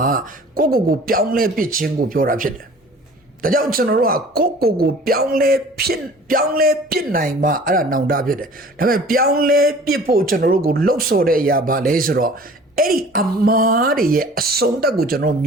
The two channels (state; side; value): normal; both; correlation 0.47